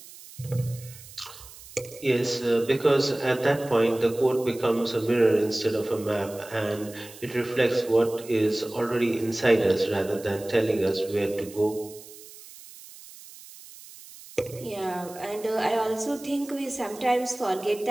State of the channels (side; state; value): right; noise; hiss, 18 dB below the sound